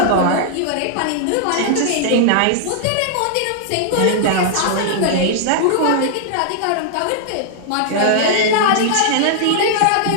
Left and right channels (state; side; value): different; both; correlation -0.01